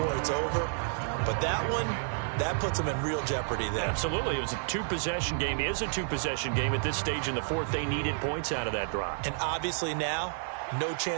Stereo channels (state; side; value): silent; left; 58 dB below the other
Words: it's over. But that one, that puts them in real jeopardy there. Absolutely. It was a two-possession game. It is a two-possession game at this stage in the fourth. They needed points out of that drive. And obviously now, no